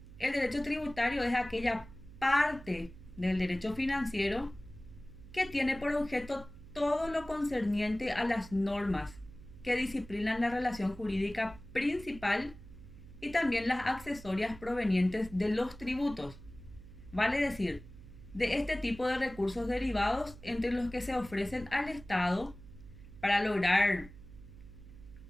el derecho tributario es aquella parte del derecho financiero que tiene por objeto todo lo concerniente a las normas que disciplinan la relación jurídica principal y también las accesorias provenientes de los tributos. Vale decir, de este tipo de recursos derivados entre los que se ofrecen al Estado para lograr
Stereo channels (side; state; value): right; noise; hum, 17 dB below the sound